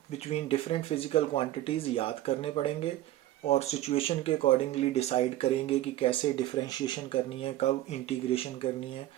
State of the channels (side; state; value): left; quieter; 14.5 dB